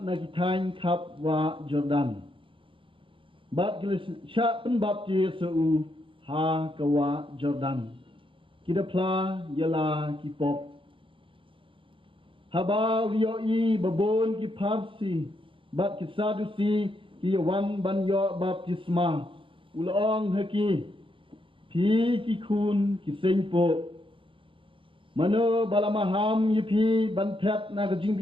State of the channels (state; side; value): late; left; 0.25 ms